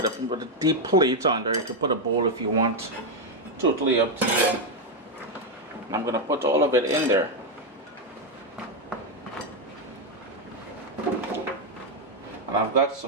a deep plate under. You can put a bowl if you want. Totally up to you. And I'm going to put all of it in there. And I've got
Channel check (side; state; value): both; normal; correlation 0.03